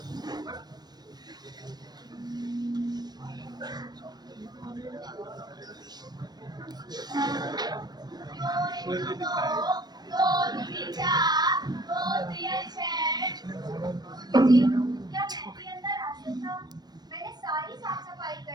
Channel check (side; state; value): left; late; 0.19 ms